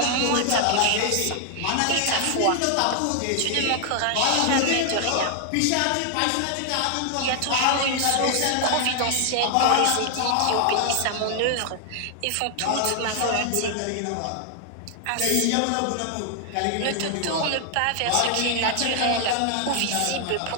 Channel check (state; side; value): different; both; correlation 0.00